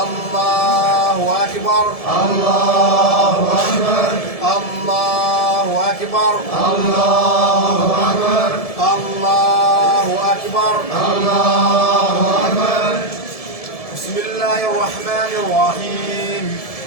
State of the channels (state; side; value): late; right; 1.7 ms